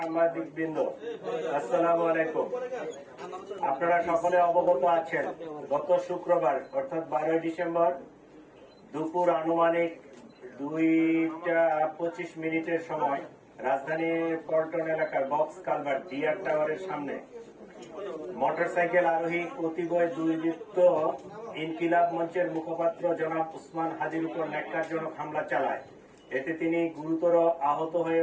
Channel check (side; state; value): both; identical; correlation 1.00